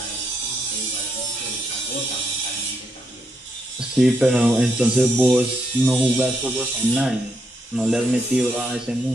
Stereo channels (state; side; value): normal; both; correlation 0.79